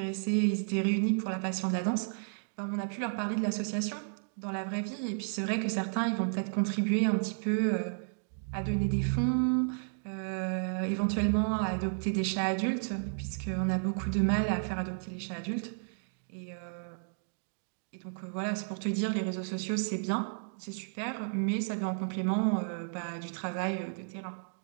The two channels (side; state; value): left; silent; digital silence